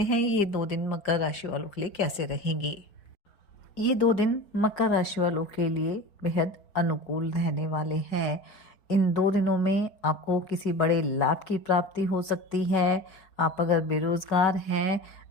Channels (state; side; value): late; right; 5.4 ms